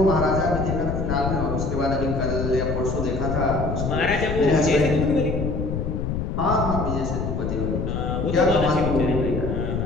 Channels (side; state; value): left; noise; rumble, 2 dB below the sound